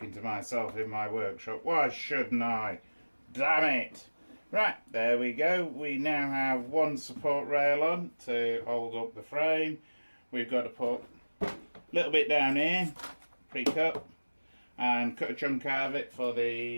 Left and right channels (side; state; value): both; inverted; correlation -1.00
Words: to myself in my workshop. Why shouldn't I? Damn it! Right, there we go. We now have one support rail on to hold up the frame. We've got to put a little bit down here, pre-cut, and cut a chunk out of it for